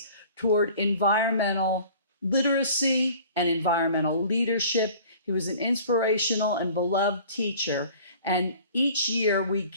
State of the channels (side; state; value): both; inverted; correlation -0.48